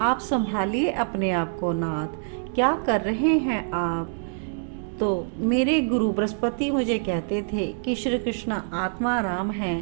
संभालिए अपने आप को नाथ, क्या कर रहे हैं आप। तो मेरे गुरु बृहस्पति मुझे कहते थे कि श्री कृष्ण आत्मा राम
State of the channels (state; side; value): silent; left; digital silence